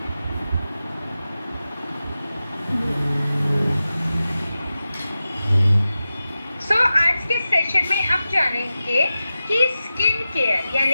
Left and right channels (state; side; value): inverted; both; correlation -0.93